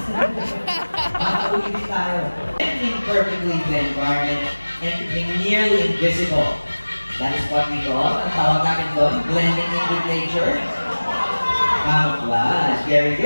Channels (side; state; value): both; inverted; correlation -1.00